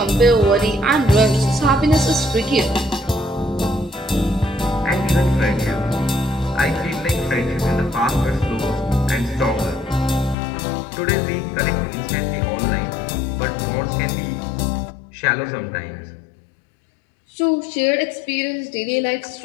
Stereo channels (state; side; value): drops out; right; at 10.4 s